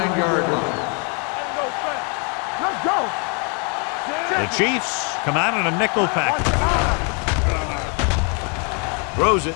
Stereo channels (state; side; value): quieter; right; 36.4 dB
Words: line. Let's go. The Chiefs come out in a nickel package. Throws it.